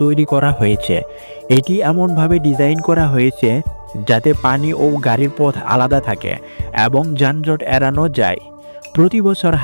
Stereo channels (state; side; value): inverted; both; correlation -1.00